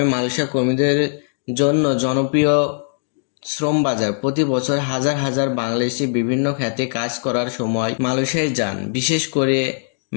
মালয়েশিয়া কর্মীদের জন্য জনপ্রিয় শ্রম বাজার। প্রতি বছর হাজার হাজার বাংলাদেশি বিভিন্ন খাতে কাজ করার সময় মালয়েশিয়ায় যান। বিশেষ করে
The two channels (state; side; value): silent; right; digital silence